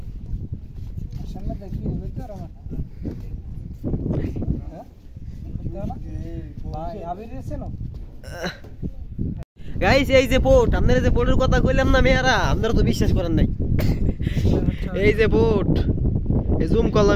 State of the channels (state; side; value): identical; both; correlation 1.00